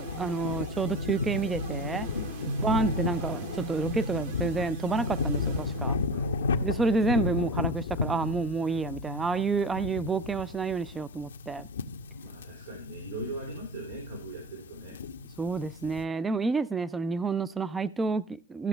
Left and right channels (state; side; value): normal; both; correlation 0.33